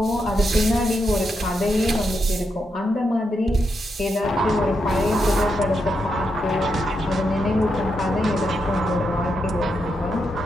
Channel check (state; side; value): normal; both; correlation 0.83